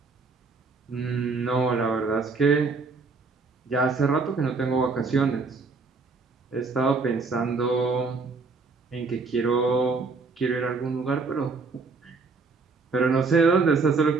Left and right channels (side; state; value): left; quieter; 4.2 dB